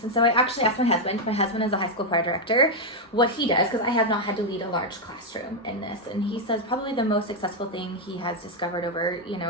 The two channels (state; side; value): normal; both; correlation 0.02